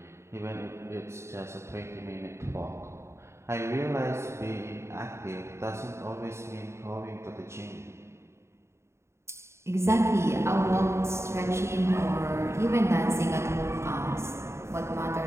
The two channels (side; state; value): left; late; 0.13 ms